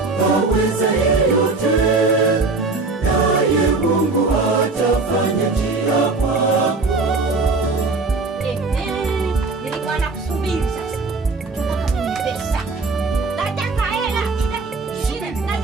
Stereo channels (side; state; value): left; quieter; 3.7 dB